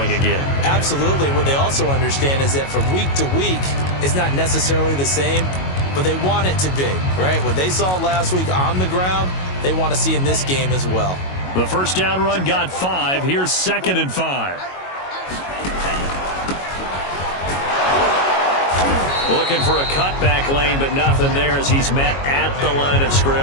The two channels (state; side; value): late; right; 22 ms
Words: again. Absolutely. What they also understand is that from week to week, it's not necessarily the same, but they want it to be, right? What they saw last week on the ground, they want to see in this game as well. The first down run got 5. Here's 2nd and 5. Looking for a cutback lane, but nothing there as he's met at the line of